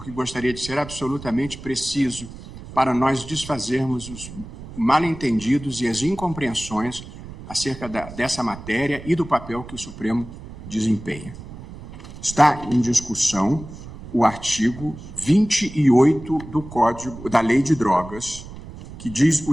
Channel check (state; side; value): noise; right; rumble, 14 dB below the sound